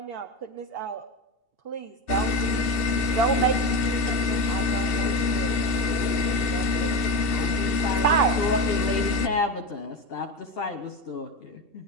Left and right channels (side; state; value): right; late; 2.7 ms